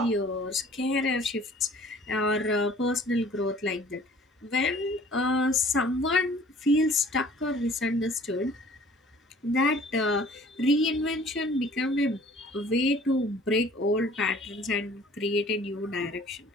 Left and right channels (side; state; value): both; normal; correlation 0.52